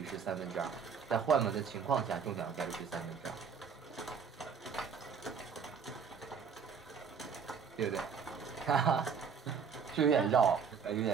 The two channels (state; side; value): quieter; left; 6.4 dB